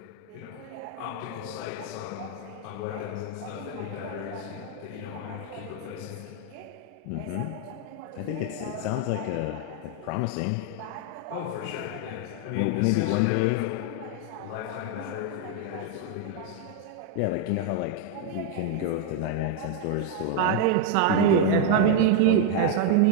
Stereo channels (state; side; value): different; both; correlation 0.00